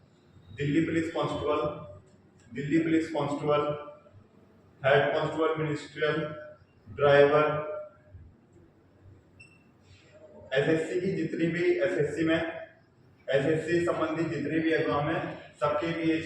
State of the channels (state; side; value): identical; both; correlation 1.00